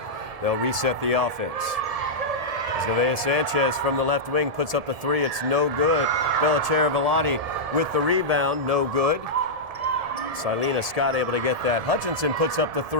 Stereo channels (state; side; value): late; left; 1.7 ms